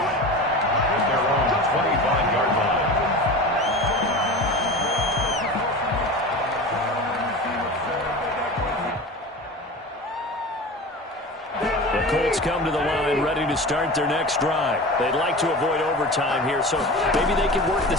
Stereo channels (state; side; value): normal; both; correlation 0.32